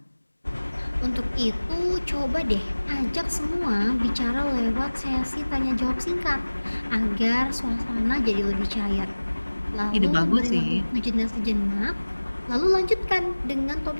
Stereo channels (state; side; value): inverted; both; correlation -1.00